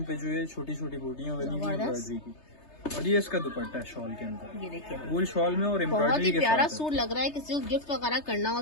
पे जो है छोटी छोटी बूटियां बनी हुई जबरदस्त। एम्ब्रॉयडरी की, और ये इसका दुपट्टा है शॉल के अंदर, ये देखिए वूल शॉल में और बहुत ही एम्ब्रॉयडरी के प्यारा साथ है। सूट लग रहा है, किसी को गिफ्ट वगैरह करना हो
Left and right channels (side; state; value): right; late; 3.3 ms